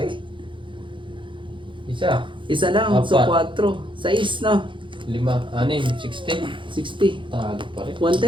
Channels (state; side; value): late; left; 0.24 ms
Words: eh. Isa. Isa lang. So Apat. 4. 6 na. 5, 6, 60. 60. Talo pa rin.